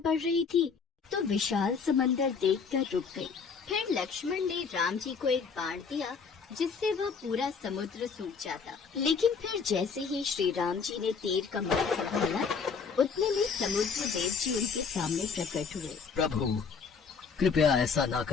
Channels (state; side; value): quieter; right; 5.6 dB